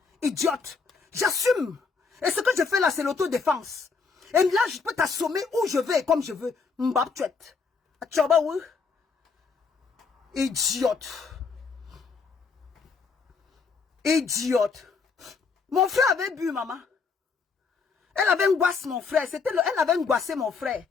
Idiote. J'assume. Et ce que je fais là, c'est l'autodéfense. Et là, je peux t'assommer où je veux et comme je veux. Mbap tuet. Atchoba ou? Idiote. Idiote. Mon frère avait bu, maman. Elle avait angoissé mon frère. Elle avait angoissé mon frère.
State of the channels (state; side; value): quieter; right; 5.0 dB